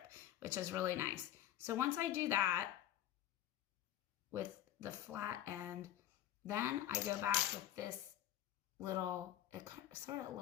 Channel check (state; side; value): quieter; right; 12.4 dB